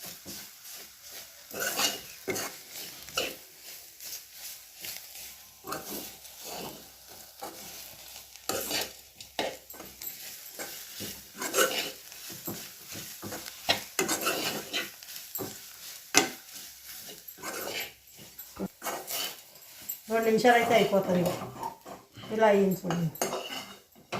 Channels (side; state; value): both; identical; correlation 1.00